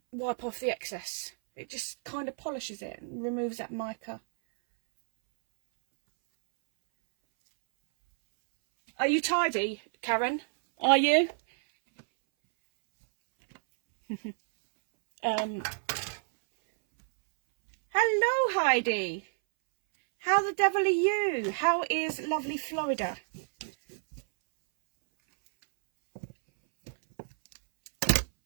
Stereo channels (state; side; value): silent; left; 58 dB below the other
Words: wipe off the excess. It just kind of polishes it and removes that mica. Are you tidy, Karen? Are you? Hello, Heidi. How the devil are you? How is lovely Florida?